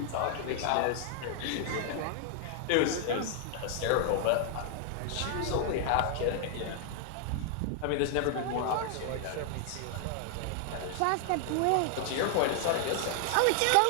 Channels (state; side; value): different; both; correlation 0.00